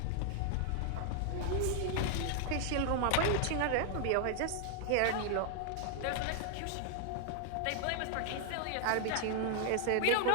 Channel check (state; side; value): different; both; correlation 0.00